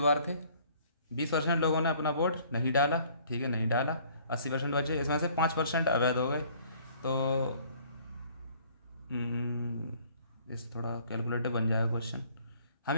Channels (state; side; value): inverted; both; correlation -0.57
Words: थे, 20% लोगों ने अपना वोट नहीं डाला, ठीक है? नहीं डाला, 80% बचे, इसमें से 5% अवैध हो गए। तो इस थोड़ा कैलकुलेटर बन जाएगा क्वेश्चन। हम